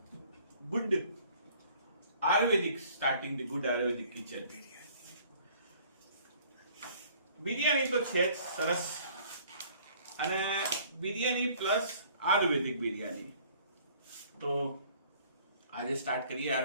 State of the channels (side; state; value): both; inverted; correlation -0.55